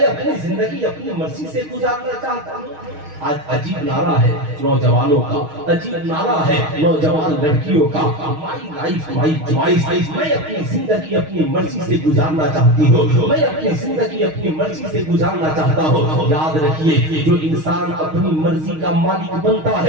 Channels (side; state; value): left; late; 6.4 ms